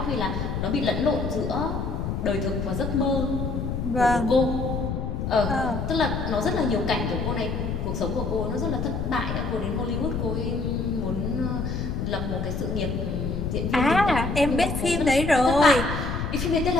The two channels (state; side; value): noise; left; rumble, 2 dB below the sound